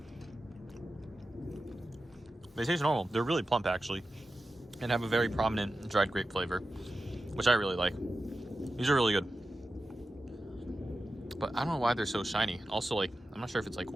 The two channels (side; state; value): both; normal; correlation 0.92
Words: They taste normal. They're really plump actually, and have a very prominent dried grape flavor, which I really like. These are really good. But I don't know why they're so shiny. Also, like, I'm not sure if it's like